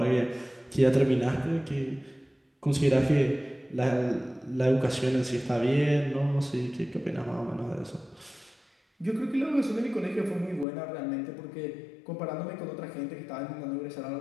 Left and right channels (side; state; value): right; drops out; at 10.7 s